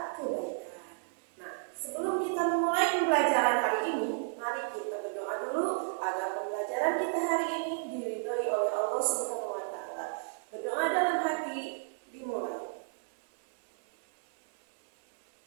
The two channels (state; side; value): silent; left; 56 dB below the other